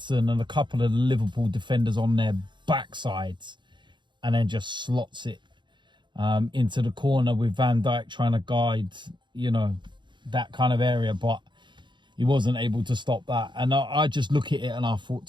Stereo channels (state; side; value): late; left; 0.23 ms